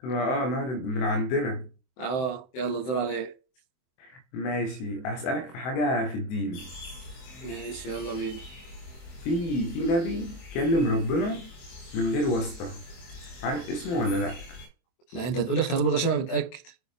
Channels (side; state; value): right; late; 23 ms